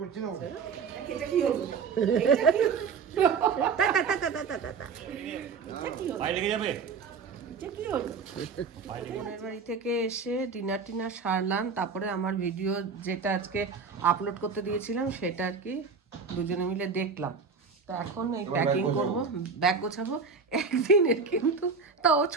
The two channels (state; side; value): quieter; left; 5.3 dB